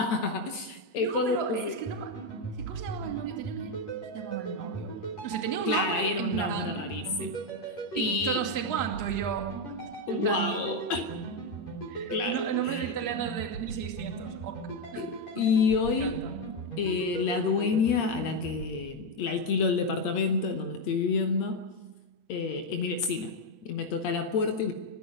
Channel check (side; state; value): right; late; 8.6 ms